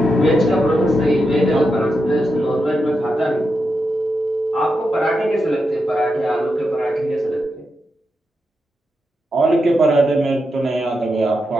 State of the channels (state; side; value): normal; both; correlation 0.86